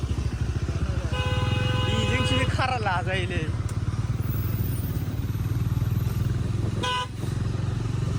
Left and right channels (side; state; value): both; identical; correlation 1.00